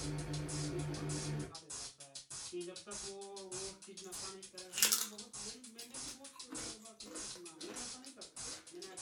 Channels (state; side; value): identical; both; correlation 1.00